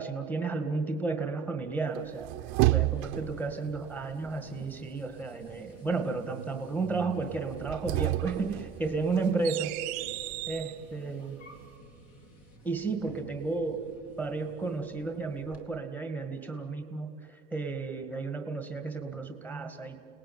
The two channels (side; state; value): left; quieter; 5.4 dB